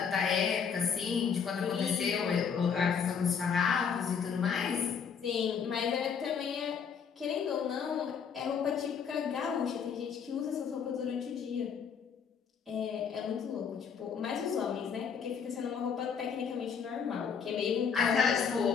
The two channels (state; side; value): quieter; right; 6.7 dB